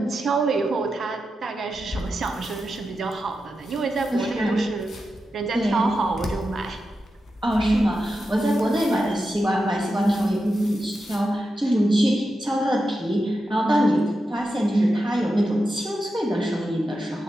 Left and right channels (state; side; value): normal; both; correlation 0.89